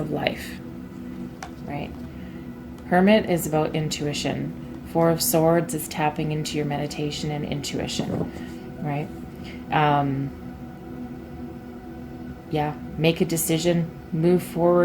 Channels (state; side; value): identical; both; correlation 1.00